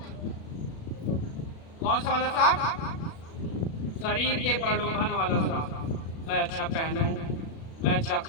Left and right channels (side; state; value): right; late; 36 ms